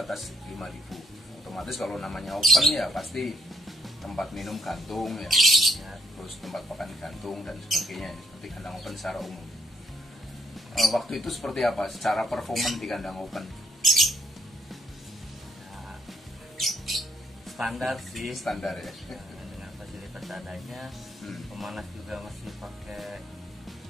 atas 5.000. Otomatis kalau namanya open ya pasti tempat minum gantung ya. Terus tempat pakan gantung dan sebagainya ya. Seperti kandang open secara umum. Waktu itu seperti apa secara performan di kandang open? Nah, standar sih. Standar ya. Dengan fasilitas adanya, pemanas juga masih pakai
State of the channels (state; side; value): normal; both; correlation 0.71